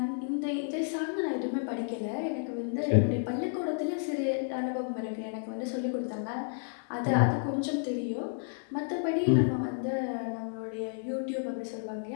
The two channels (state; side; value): silent; right; digital silence